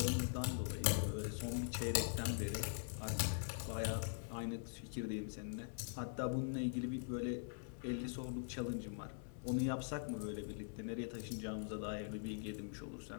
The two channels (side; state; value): right; silent; digital silence